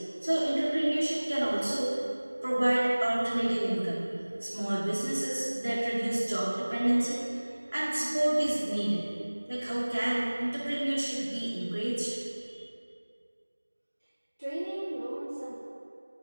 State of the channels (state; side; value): inverted; both; correlation -1.00